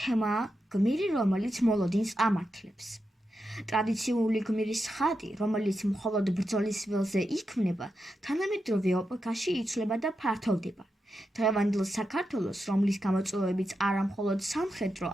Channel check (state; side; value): normal; both; correlation 0.87